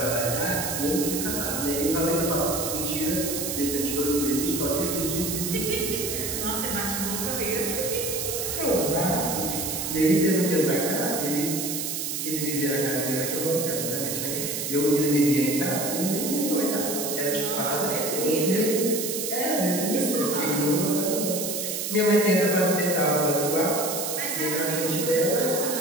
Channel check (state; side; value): noise; right; hiss, 3 dB below the sound